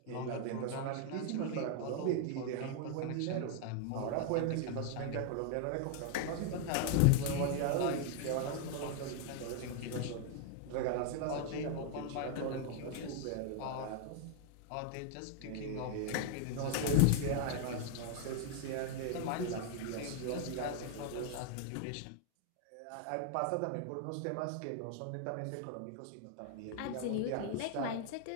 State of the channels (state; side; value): different; both; correlation 0.00